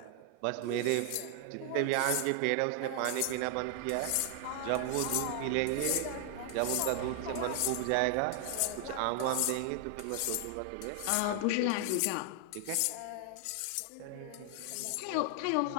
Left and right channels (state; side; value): different; both; correlation 0.00